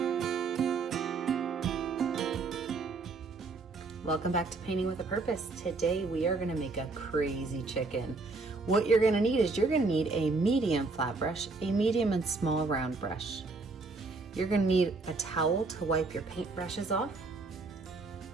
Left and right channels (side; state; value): left; quieter; 3.8 dB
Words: back to Painting with a Purpose. Today we are going to make a crazy chicken. What you're going to need is you're going to need a medium flat brush, a medium and small round brush. You're going to need a towel to wipe your paint brushes off,